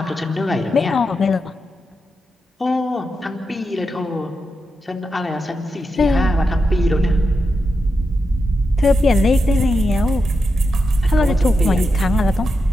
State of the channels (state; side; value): normal; both; correlation 0.87